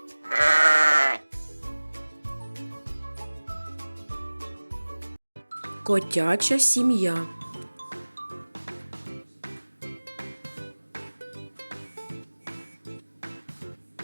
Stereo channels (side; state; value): both; inverted; correlation -1.00